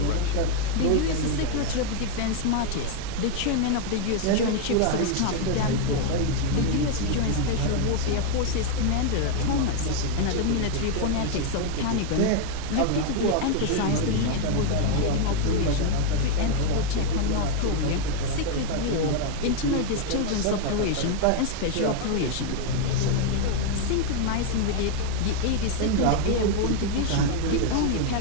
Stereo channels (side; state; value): both; different; correlation 0.00